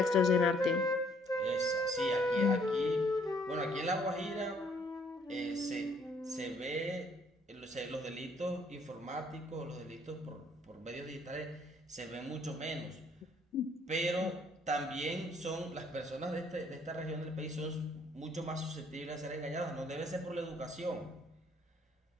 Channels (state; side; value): normal; both; correlation 0.64